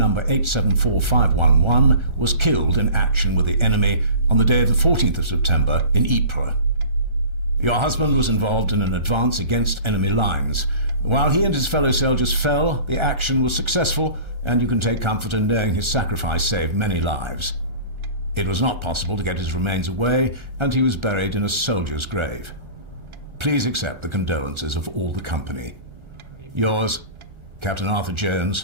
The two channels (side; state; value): left; late; 1.4 ms